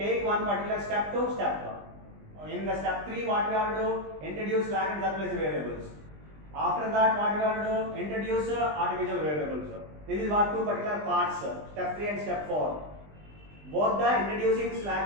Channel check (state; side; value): late; left; 20 ms